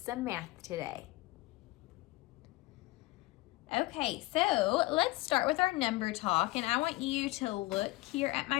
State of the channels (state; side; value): quieter; right; 20.7 dB